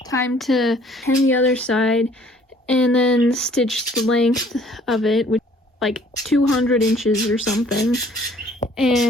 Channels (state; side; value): normal; both; correlation 0.57